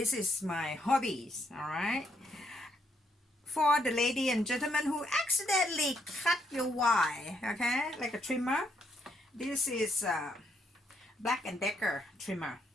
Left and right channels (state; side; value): normal; both; correlation 0.75